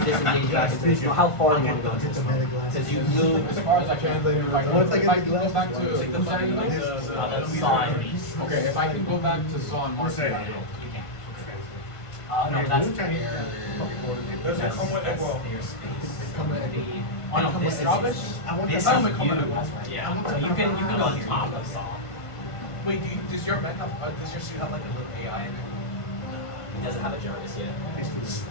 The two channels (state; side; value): late; right; 1.5 ms